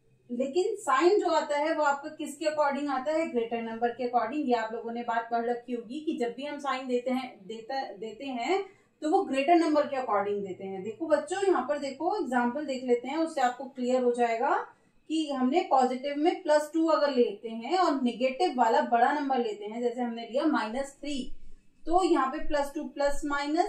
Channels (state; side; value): identical; both; correlation 1.00